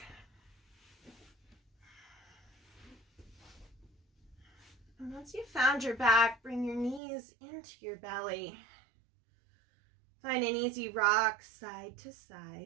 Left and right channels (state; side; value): drops out; left; at 7.0 s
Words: And once you've found your back, bring your knees into your belly. Find an easy rock side to